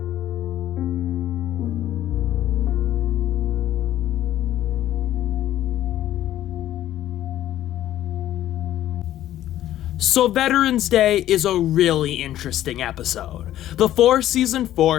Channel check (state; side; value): quieter; right; 12.9 dB